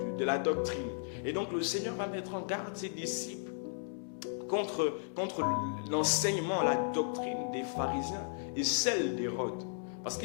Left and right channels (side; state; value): right; silent; 54 dB below the other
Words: la doctrine. Et donc le Seigneur va mettre en garde ses disciples contre l'enseignement, la doctrine des pharisiens et celle d'Hérode. Parce